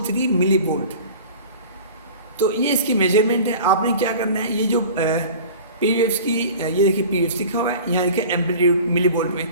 मिली वोल्ट। तो ये इसकी मेजरमेंट है। आपने क्या करना है, ये जो पी वेव्स की, ये देखिए पी वेव्स लिखा हुआ है, यहाँ देखिए एम्पलीट्यूड मिली वोल्ट में,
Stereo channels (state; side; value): inverted; both; correlation -0.40